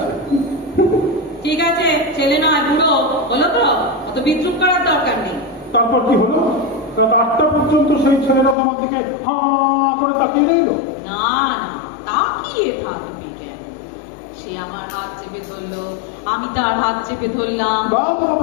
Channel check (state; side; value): drops out; right; at 8.6 s